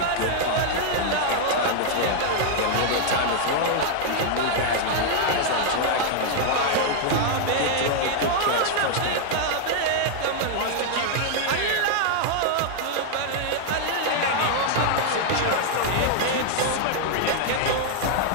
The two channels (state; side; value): different; both; correlation 0.00